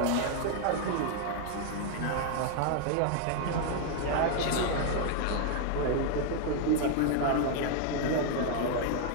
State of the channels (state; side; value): different; both; correlation 0.00